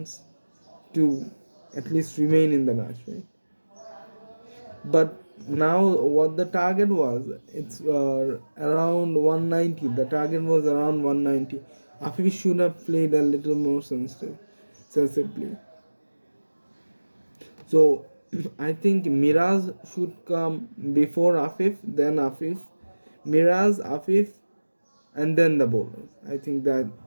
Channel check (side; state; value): both; inverted; correlation -1.00